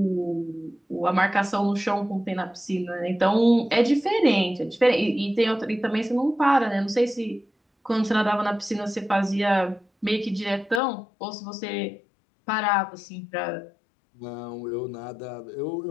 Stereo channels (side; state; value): right; drops out; at 10.8 s